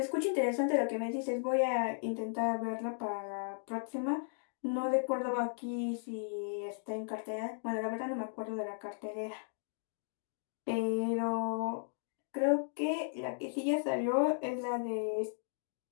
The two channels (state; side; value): silent; right; digital silence